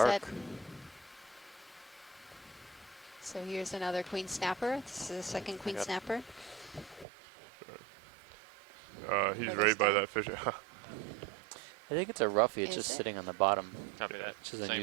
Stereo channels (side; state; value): left; drops out; at 7.1 s